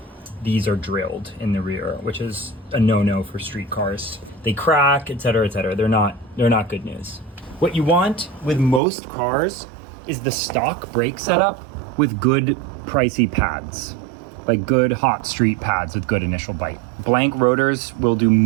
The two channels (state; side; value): drops out; left; at 8.8 s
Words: These are drilled in the rear, which is a no-no for street cars. They crack, etc., etc. They're not good news. What you want with most cars is the stock brake setup with good pricey pads, like good hot street pads with good initial bite. Blank rotors will do